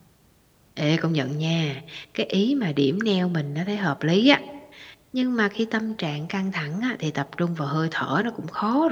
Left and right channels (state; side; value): identical; both; correlation 1.00